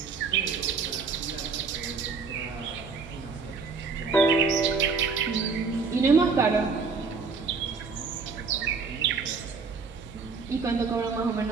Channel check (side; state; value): left; quieter; 4.8 dB